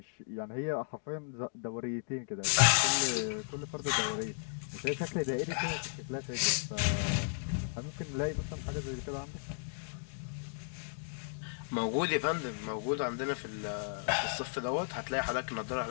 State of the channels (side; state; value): right; silent; digital silence